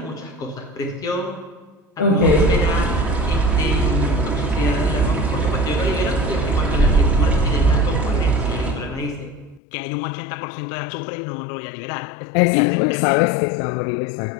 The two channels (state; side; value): drops out; right; at 9.6 s